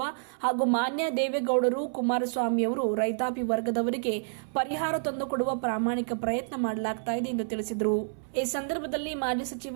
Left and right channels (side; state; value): left; silent; 59 dB below the other